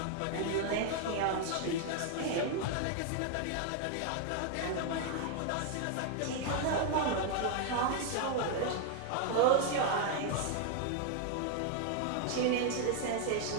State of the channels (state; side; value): different; both; correlation 0.00